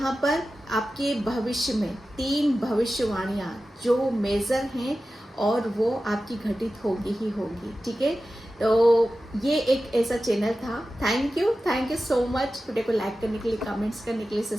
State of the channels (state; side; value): normal; both; correlation 0.94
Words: पर आपके भविष्य में 3 भविष्यवाणियाँ जो मेजर हैं और वो आपकी घटित होगी ही होगी। ठीक है, तो ये एक ऐसा चैनल था। Thank you so much video को लाइक करने के लिए, कमेंट्स करने के लिए,